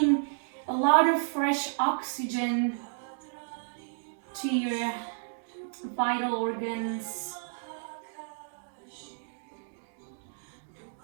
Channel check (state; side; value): silent; left; digital silence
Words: a lot of fresh oxygen to your vital organs.